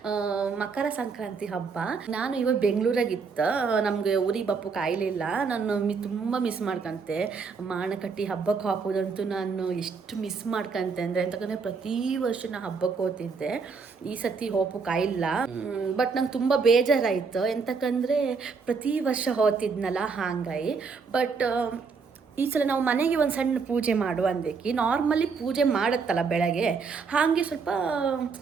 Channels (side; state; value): left; quieter; 5.1 dB